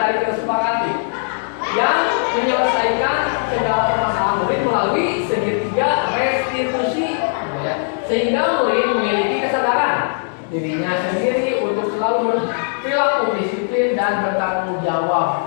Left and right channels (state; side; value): silent; right; digital silence